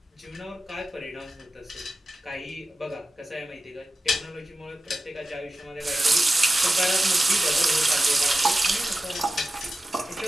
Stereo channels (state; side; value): normal; both; correlation 0.94